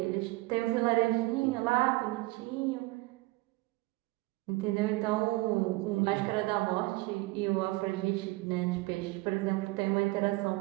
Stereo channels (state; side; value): quieter; left; 21.7 dB